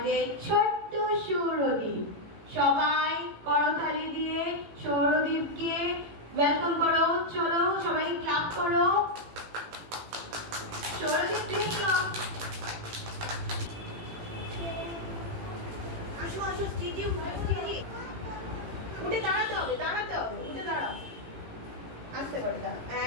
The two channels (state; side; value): late; left; 18 ms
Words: ছোট্ট সৌরদীপ। সবাই করতালি দিয়ে সৌরদীপকে ওয়েলকাম করো। চলো সবাই ক্লাপ করো। সৌরদীপ প্লিজ আসো আসো স্টেজে উঠে দাঁড়াতে হবে উঠে দাঁড়াও। আসতে করে দাও।